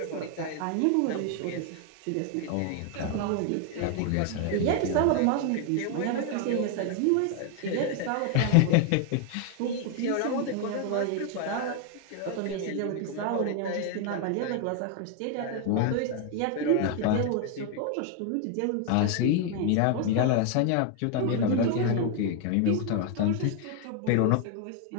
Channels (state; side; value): different; both; correlation 0.01